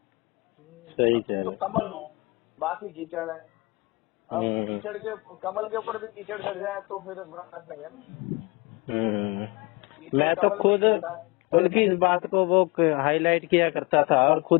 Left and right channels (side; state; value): right; quieter; 25.9 dB